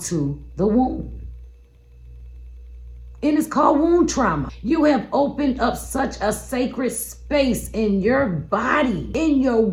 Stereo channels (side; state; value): both; identical; correlation 1.00